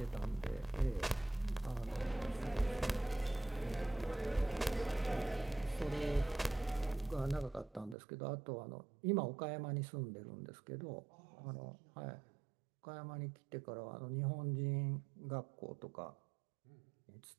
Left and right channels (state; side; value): drops out; left; at 8.0 s